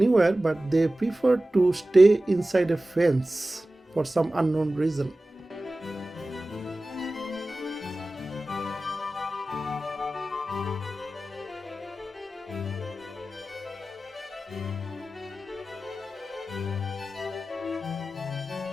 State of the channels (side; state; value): both; normal; correlation 0.96